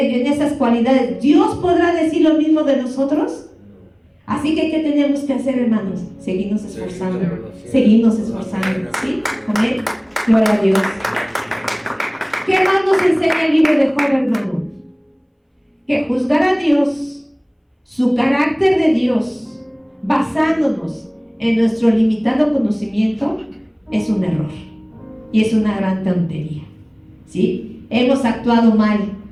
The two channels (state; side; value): identical; both; correlation 1.00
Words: esas cualidades. ¿Dios podrá decir lo mismo de nosotros? Así que, ¿qué tenemos que hacer, hermanos? Seguirnos esforzando. ¿Sí? Amén. Gloria a Dios. ¿Qué más nos enseña el libro de Job, hermano? Que juzgar a Dios, su carácter de Dios, basándonos en nuestro limitado conocimiento, es un error. Y es una gran tontería. ¿Sí? Hemos actuado mal.